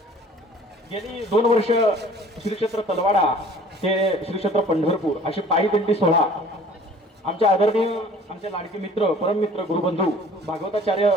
गेली 2 वर्ष श्री क्षेत्र तलवाडा ते श्री क्षेत्र पंढरपूर अशी पायी दिंडी सोहळा आमचे आदरणीय आमचे लाडके मित्र परममित्र गुरुबंधू भागवताचार्य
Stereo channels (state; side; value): normal; both; correlation 0.50